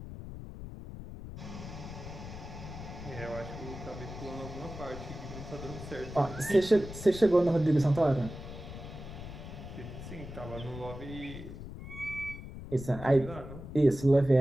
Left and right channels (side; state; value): left; noise; rumble, 11 dB below the sound